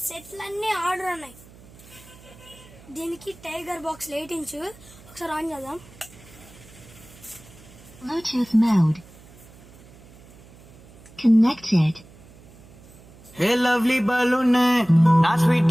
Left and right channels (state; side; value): noise; right; hum, 22 dB below the sound